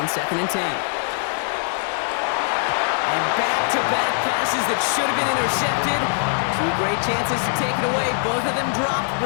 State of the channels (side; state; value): right; silent; digital silence